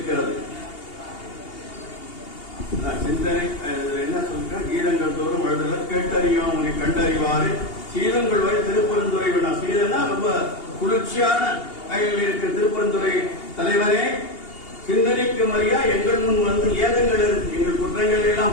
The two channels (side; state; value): right; late; 2.8 ms